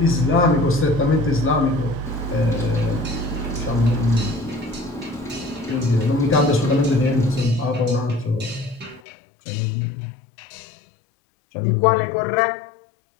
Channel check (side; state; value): right; drops out; at 9.0 s